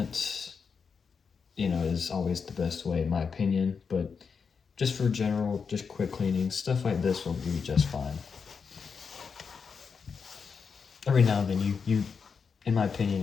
you know, is always the best way in my opinion. But just for general, just quick cleaning, stuff like this will be just fine. Every now and then you in my opinion,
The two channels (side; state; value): right; quieter; 5.8 dB